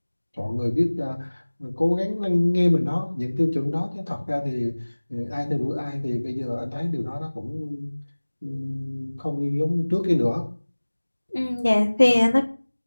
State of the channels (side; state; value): both; inverted; correlation -1.00